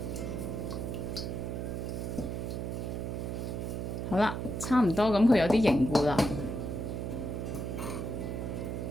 好啦，差唔多，咁佢有啲凝固啦。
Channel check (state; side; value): noise; right; hum, 3 dB below the sound